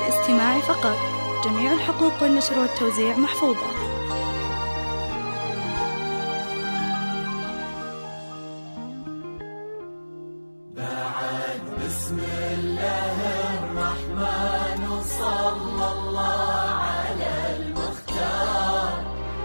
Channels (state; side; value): inverted; both; correlation -1.00